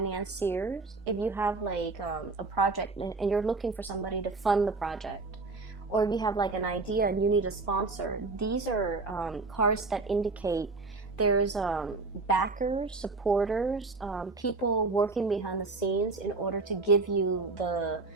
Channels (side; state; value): left; quieter; 3.7 dB